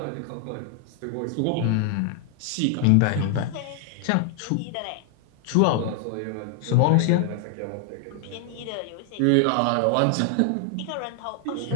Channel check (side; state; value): both; different; correlation 0.00